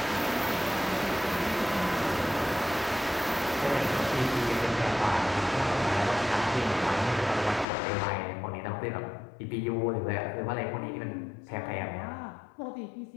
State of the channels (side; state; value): right; drops out; at 7.7 s